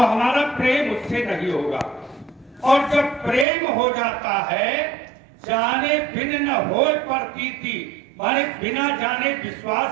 प्रेम उससे नहीं होगा, और जब प्रेम हो जाता है जाने बिन न होए प्रतीति, माने बिना जाने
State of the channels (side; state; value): left; drops out; at 3.5 s